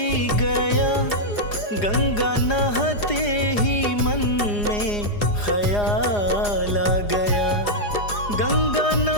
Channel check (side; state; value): right; late; 4.9 ms